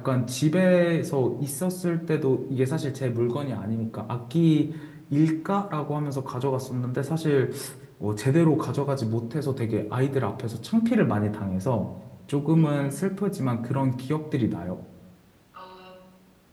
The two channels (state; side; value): identical; both; correlation 1.00